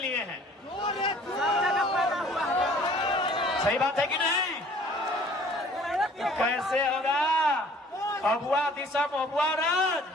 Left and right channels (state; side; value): normal; both; correlation 0.53